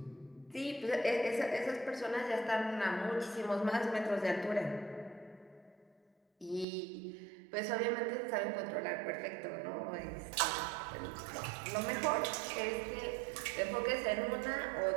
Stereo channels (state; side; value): drops out; left; at 6.7 s